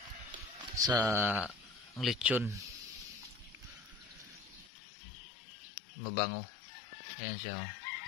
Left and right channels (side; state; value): right; drops out; at 4.7 s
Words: sa lechon. Mabango. Ayan siya. Oh.